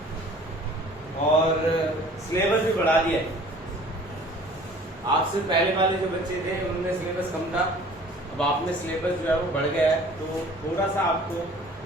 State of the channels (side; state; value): both; normal; correlation 0.49